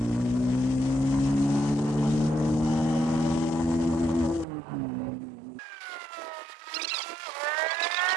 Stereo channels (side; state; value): left; drops out; at 4.5 s